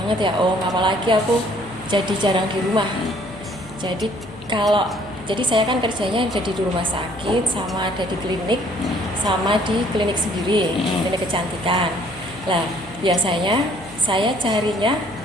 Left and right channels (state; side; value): noise; right; hum, 21 dB below the sound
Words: ya Om, apalagi aku jadi jarang di rumah. Jadi saya kan kerjanya ada di rumah sakit, sama ada di klinik, sama di klinik sendiri, klinik kecantikan. Lah, biasanya saya carinya